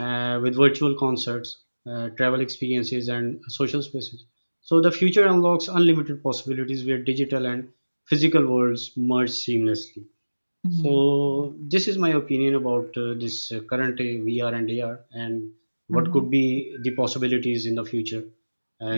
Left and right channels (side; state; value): both; inverted; correlation -1.00